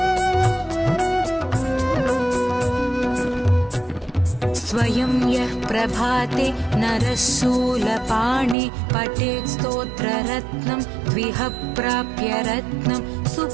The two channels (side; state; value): left; drops out; at 8.6 s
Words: स्वयं यः प्रभाते नरः शूलपाणे पठेत् स्तोत्ररत्नं द्विह प्राप्य रत्नं